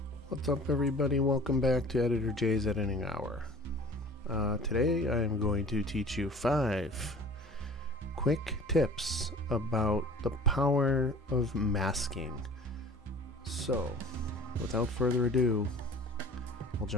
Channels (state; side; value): normal; both; correlation 0.44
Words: What's up, everybody? Welcome back to Editor J's Editing Hour. Today I am going to teach you 5 quick tips about the power of masking. So, without further ado, we'll